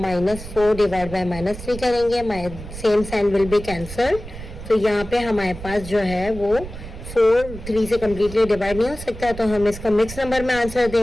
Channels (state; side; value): noise; right; rumble, 12 dB below the sound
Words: -4 डिवाइड बाय -3 करेंगे, same sign will be cancel. तो यहाँ पे हमारे पास जो है वो 4 3 से कम्प्लीटली डिवाइड नहीं हो सकता, तो हम इसका मिक्स नंबर में आंसर